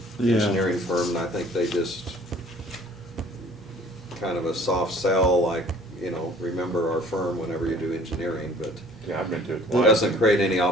Yeah. engineering firm, and I think they just kind of a soft sell, like, you know, remember our firm whenever you do engineering, but Yeah, I've been to it it twice. doesn't create any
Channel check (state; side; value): normal; both; correlation 0.52